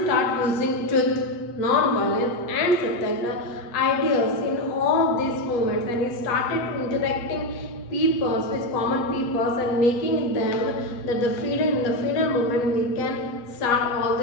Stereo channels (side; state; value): right; late; 8.4 ms